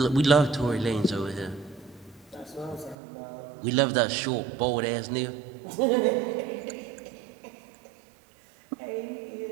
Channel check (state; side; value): drops out; left; at 3.0 s